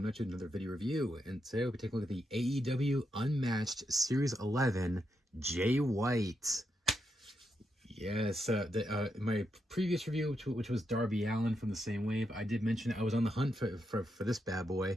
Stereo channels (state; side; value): normal; both; correlation 0.83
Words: at you with another video review, and today we'll be taking a look at the AEW Unmatched Series 11 Jay White. Yes, my previous review, which was Darby Allin from the same wave, I did mention I was on the hunt for this bad